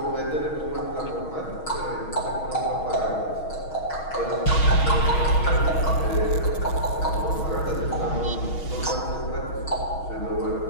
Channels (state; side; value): late; right; 6.3 ms